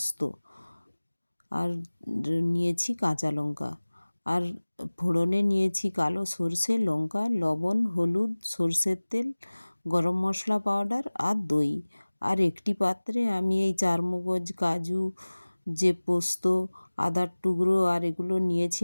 আর নিয়েছি কাঁচা লঙ্কা। আর ফোড়নে নিয়েছি কালো সর্ষে, লঙ্কা, লবণ, হলুদ, সর্ষের তেল, গরম মশলা পাউডার আর দই। আর একটি পাত্রে আমি এই চারমগজ, কাজু, যে পোস্ত, আদার টুকরো আর এগুলো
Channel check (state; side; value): inverted; both; correlation -1.00